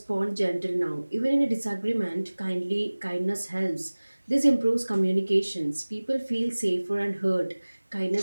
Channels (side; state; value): both; inverted; correlation -1.00